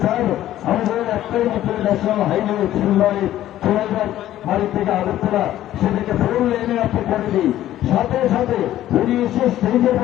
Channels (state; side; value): quieter; right; 13.2 dB